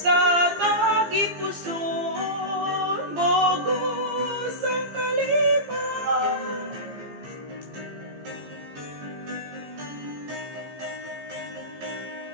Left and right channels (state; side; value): late; left; 15 ms